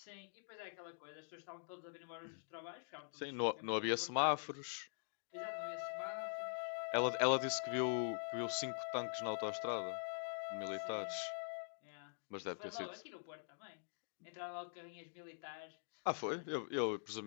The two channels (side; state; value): right; silent; digital silence